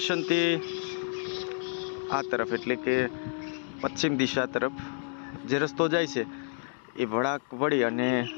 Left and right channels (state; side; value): silent; right; 57 dB below the other